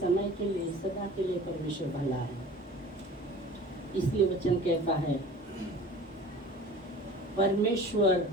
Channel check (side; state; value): both; normal; correlation 0.42